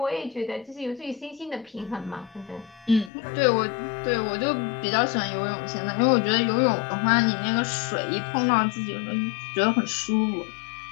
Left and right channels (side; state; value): right; drops out; at 3.1 s